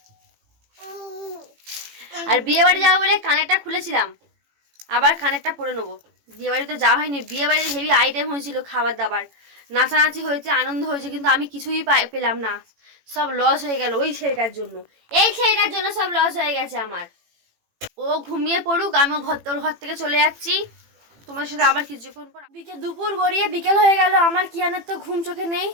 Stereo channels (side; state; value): left; late; 18 ms